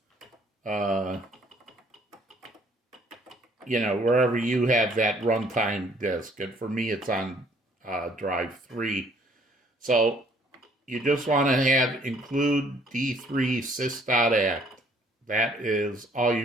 wherever you have that runtime disk. And for me, it's on drive 3. So you just want to have include D3 sys.act. That is all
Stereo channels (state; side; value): normal; both; correlation 0.60